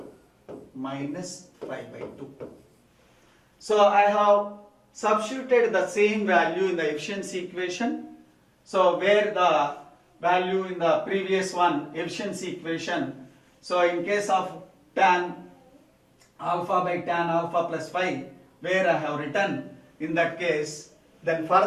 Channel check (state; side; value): identical; both; correlation 1.00